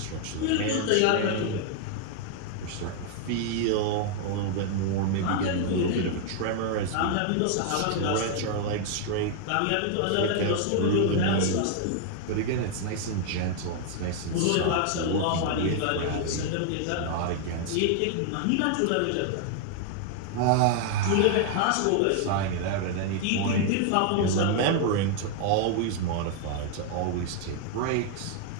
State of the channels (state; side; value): different; both; correlation 0.00